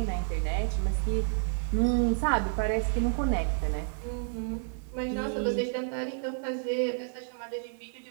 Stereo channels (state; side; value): silent; left; digital silence